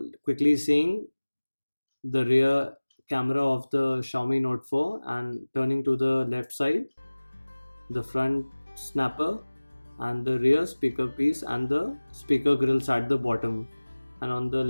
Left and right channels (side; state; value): both; inverted; correlation -1.00